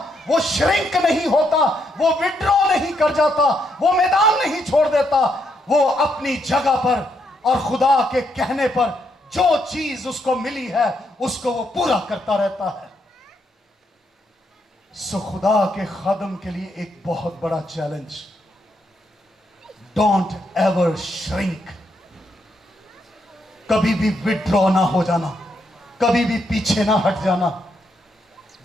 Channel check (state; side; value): normal; both; correlation 0.77